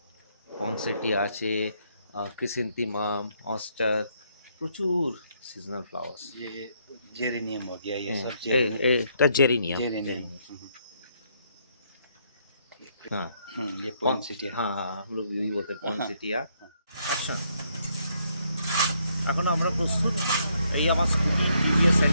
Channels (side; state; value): both; inverted; correlation -0.72